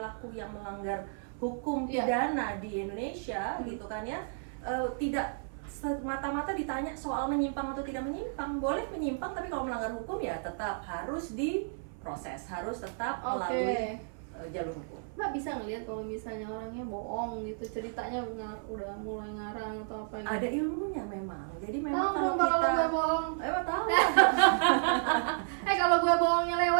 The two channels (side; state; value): left; silent; 56 dB below the other